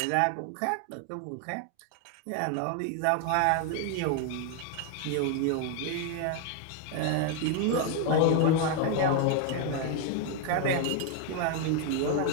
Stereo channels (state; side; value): different; both; correlation 0.01